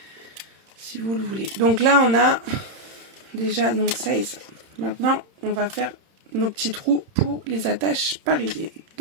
Si vous le voulez. Donc là, on a déjà donc ça et ça. Maintenant, on va faire nos petits trous pour les attaches parisiennes.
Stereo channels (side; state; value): left; late; 30 ms